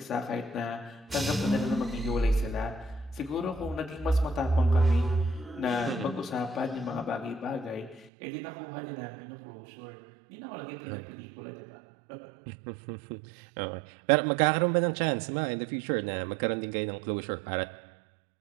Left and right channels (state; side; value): drops out; left; at 8.1 s